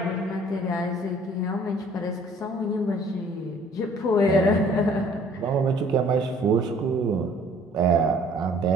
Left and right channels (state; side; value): normal; both; correlation 0.56